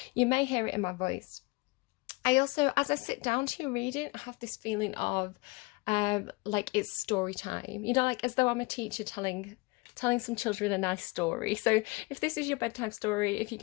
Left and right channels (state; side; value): quieter; right; 25.7 dB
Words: you may hear it in my voice. I also, as I sit down to read it, I have this feeling of like it's story time, you know, like as though I'm a teacher telling some children a nice story. So if this is your bedtime story, if you're